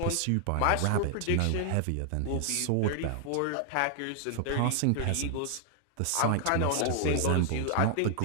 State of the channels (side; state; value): both; different; correlation 0.00